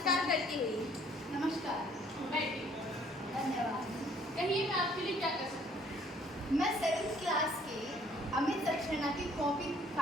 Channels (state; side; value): normal; both; correlation 0.60